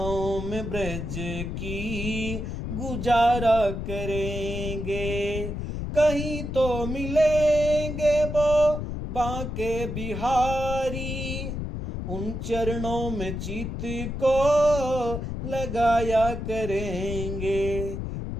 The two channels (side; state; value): left; noise; rumble, 5 dB below the sound